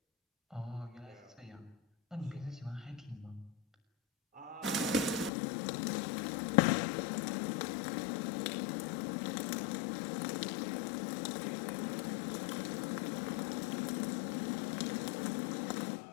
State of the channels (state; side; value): drops out; right; at 5.3 s